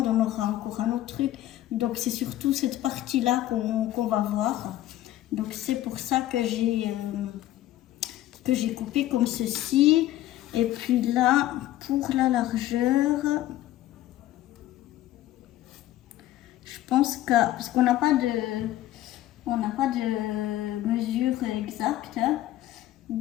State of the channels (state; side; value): quieter; right; 14.3 dB